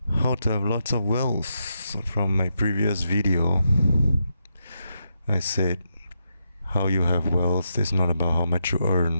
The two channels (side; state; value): both; inverted; correlation -0.83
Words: How to Have Lots of Wealth. From my previous video, I said how you have wealth is not about how much you